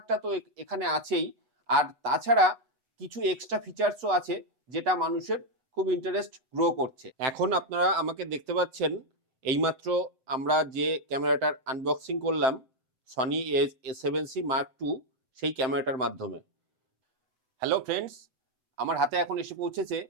তো এখানে আছেই, আর তাছাড়া কিছু এক্সট্রা ফিচার্সও আছে যেটা মানুষের খুব ইন্টারেস্ট গ্রো করছে। এখন আপনারা আমাকে দেখতে পাচ্ছেন, এইমাত্র আমরা যে ক্যামেরাটার আনবক্সিং করলাম সনি A7C Mark II সেই ক্যামেরাটার মাধ্যমে। হ্যালো ফ্রেন্ডস, আমার হাতে এখন এসে পৌঁছেছে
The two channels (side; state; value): left; late; 8.2 ms